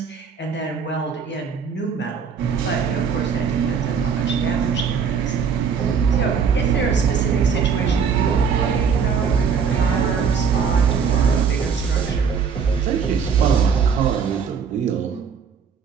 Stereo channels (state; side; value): quieter; left; 6.4 dB